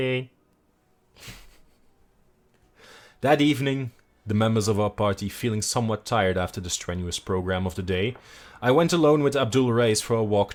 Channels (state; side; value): identical; both; correlation 1.00